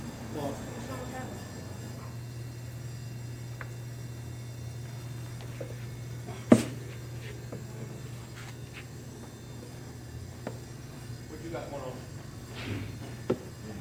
well, What you got going on?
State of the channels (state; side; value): identical; both; correlation 1.00